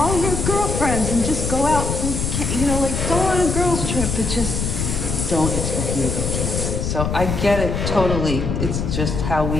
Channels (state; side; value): noise; left; rumble, 2 dB below the sound